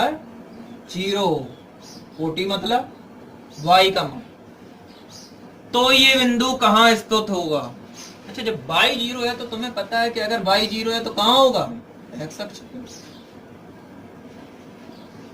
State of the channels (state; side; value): identical; both; correlation 1.00